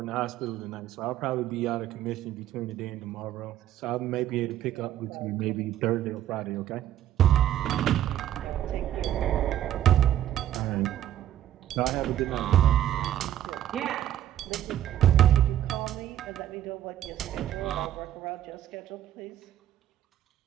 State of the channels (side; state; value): left; quieter; 11.7 dB